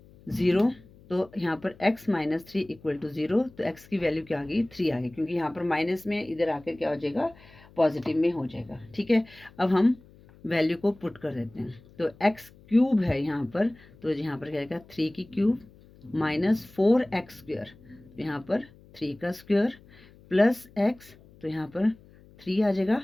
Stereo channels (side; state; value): left; noise; hum, 25 dB below the sound